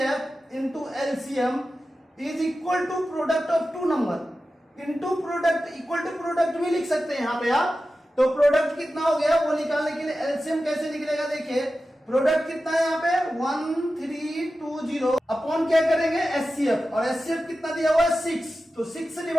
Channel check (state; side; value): normal; both; correlation 0.93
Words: into LCM is equal to product of two number into product, equal to product भी लिख सकते हैं यहाँ पे आप। तो प्रोडक्ट कितना हो गया वो निकालने के लिए एलसीएम कैसे निकलेगा, देखिए प्रोडक्ट कितना है यहाँ पे 1320 अपॉन क्या करेंगे एचसीएफ, और एचसीएफ कितना दिया हुआ है 6। तो 6 से